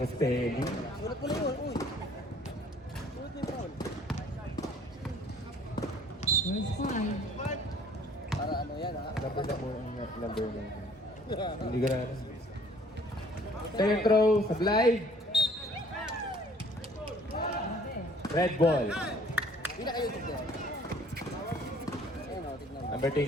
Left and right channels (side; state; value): both; normal; correlation 0.56